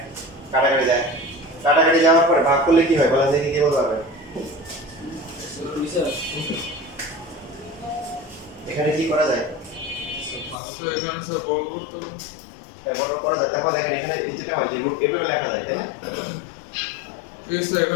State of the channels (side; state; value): right; drops out; at 10.6 s